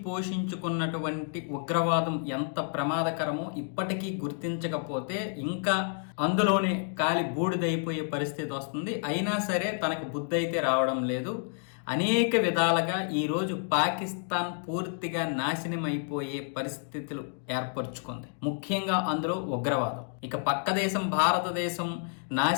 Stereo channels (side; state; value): right; silent; 58 dB below the other